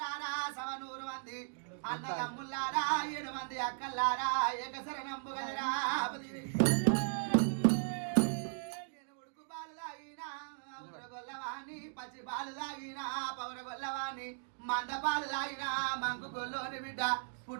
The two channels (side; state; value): left; silent; digital silence